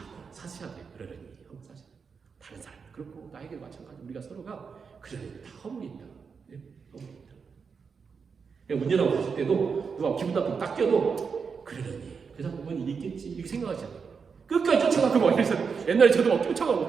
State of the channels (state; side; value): quieter; left; 5.7 dB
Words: 사셔야 돼요. 그러려니 하고 사셔야 돼요. 다른 사람 그렇고 나에게 마찬가지 우리가 서로가 그러려니 다 허물이 있다. 네? 허물이 있다. 문제라고 봤을 때도 누가 기분 나쁘게 딱 껴도 그러려니 그 사람 뭔 일이 있겠지 이렇게 생각하지 않아요. 끝까지 쫓아가고 막 이래서 옛날에 저도 막 쫓아가고